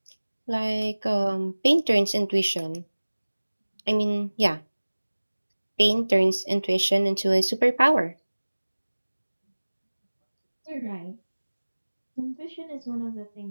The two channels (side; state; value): both; inverted; correlation -1.00